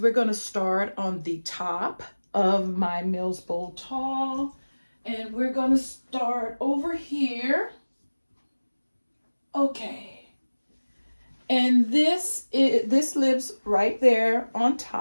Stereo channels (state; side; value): inverted; both; correlation -1.00